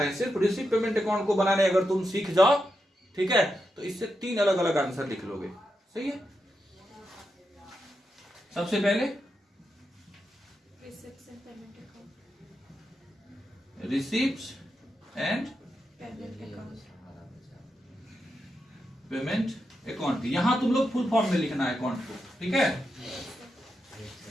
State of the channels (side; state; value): both; normal; correlation 0.86